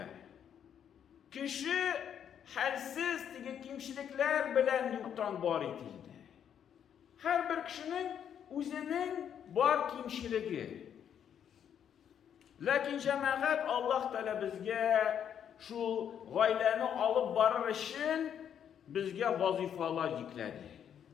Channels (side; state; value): right; quieter; 8.8 dB